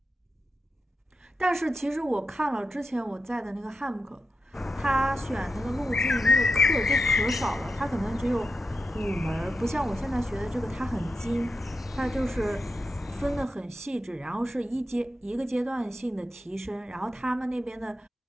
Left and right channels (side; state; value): both; normal; correlation 0.88